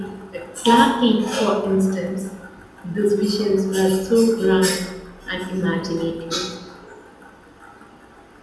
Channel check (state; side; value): identical; both; correlation 1.00